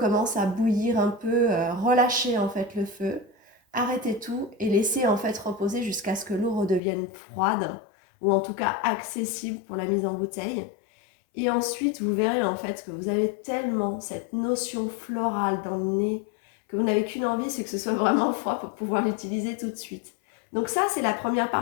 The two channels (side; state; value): right; drops out; at 6.8 s